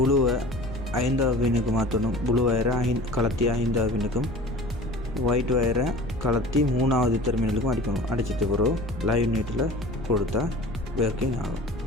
5வது பின்னுக்கு மாற்றணும். புளு வயரை கலத்தி 5வது பின்னுக்கும், ஒயிட் வயரை கலத்தி 3வது டெர்மினலுக்கும் அடிக்கணும். அடிச்சிட்டு பிறகு லைவ் நெட்டில் கொடுத்தா ஒர்க்கிங் ஆகும்.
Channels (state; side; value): noise; left; rumble, 12 dB below the sound